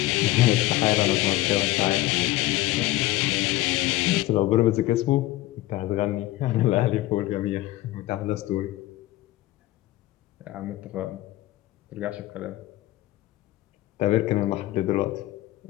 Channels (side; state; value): right; quieter; 17.1 dB